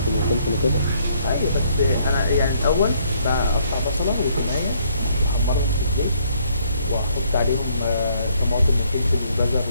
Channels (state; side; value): inverted; both; correlation -0.67